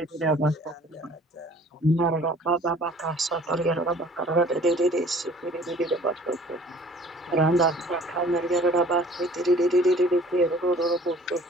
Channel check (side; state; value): both; normal; correlation 0.51